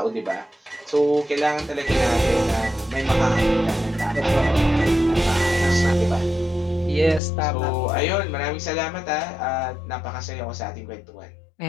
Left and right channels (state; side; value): drops out; right; at 7.2 s